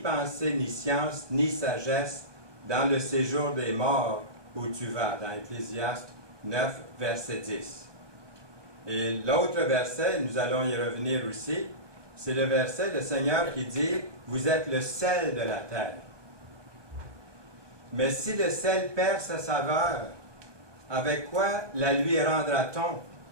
ni science, ni sagesse dans le séjour des morts où tu vas. » Dans Ecclésiaste 9, verset 10. Et l'autre verset, nous allons y revenir aussi, c'est le verset du Seigneur qui dit « Vous êtes le sel de la terre. » Mais si le sel perd sa saveur, avec quoi la lui rendra-t-on?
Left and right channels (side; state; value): left; late; 1.2 ms